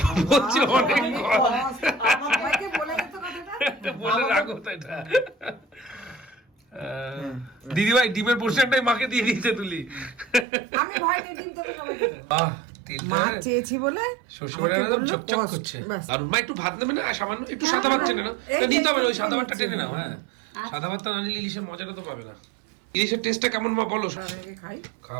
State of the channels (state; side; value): drops out; left; at 10.5 s